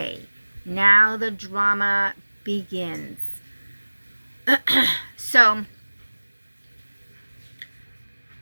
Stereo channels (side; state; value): both; inverted; correlation -1.00